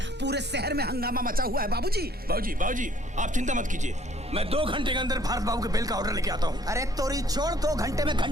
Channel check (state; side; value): late; right; 9.6 ms